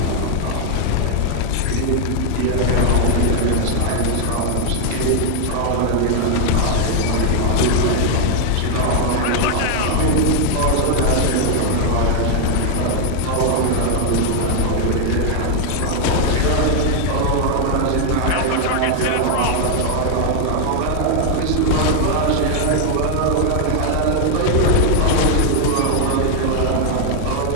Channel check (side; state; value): both; different; correlation 0.00